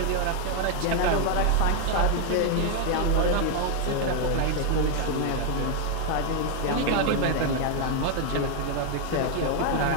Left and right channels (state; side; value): different; both; correlation 0.00